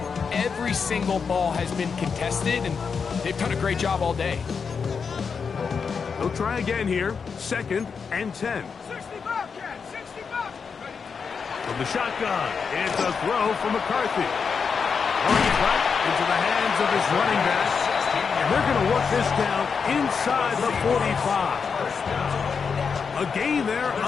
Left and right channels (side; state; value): right; quieter; 5.8 dB